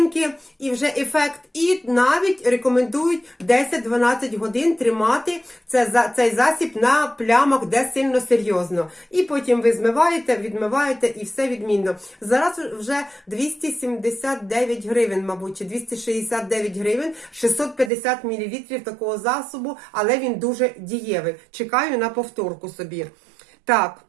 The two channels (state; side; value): drops out; left; at 17.9 s